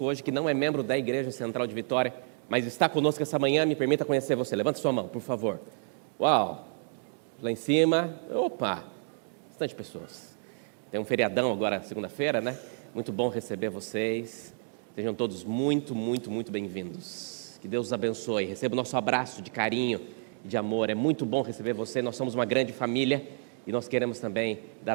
hoje que não é membro da Igreja Central de Vitória, mas está conosco essa manhã. Me permita conhecer você. Levanta sua mão, por favor. Uau! Lá em cima, opa, bastante pessoas. Tem um feriadão agora, segunda-feira, né? Muito bom receber vocês. Sejam todos muito, muito, muito bem-vindos. Que Deus os abençoe. Receba o nosso abraço de carinho e de amor. É muito bom receber você. Nós somos uma grande família e nós queremos também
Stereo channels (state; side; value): silent; left; digital silence